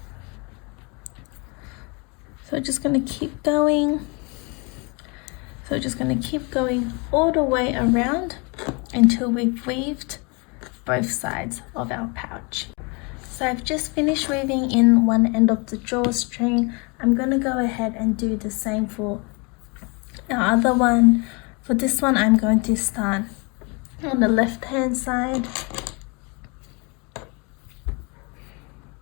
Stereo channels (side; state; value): right; quieter; 30.9 dB